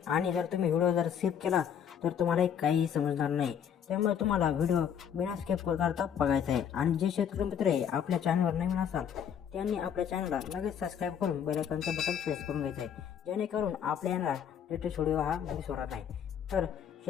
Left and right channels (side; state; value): right; quieter; 8.4 dB